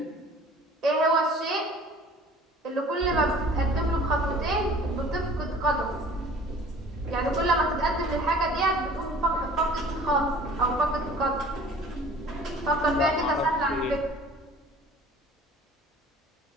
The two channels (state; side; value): normal; both; correlation 0.48